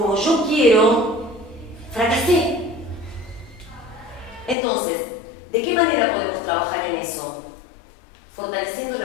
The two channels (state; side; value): drops out; right; at 4.5 s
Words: yo quiero, fracasé. Entonces, ¿de qué manera podemos trabajar en eso? Fortaleciendo